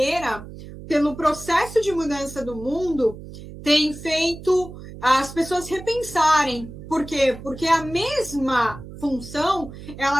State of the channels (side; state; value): right; noise; hum, 14 dB below the sound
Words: pelo processo de mudança do mundo, tem feito as pessoas repensarem. Por quê? Porque a mesma função,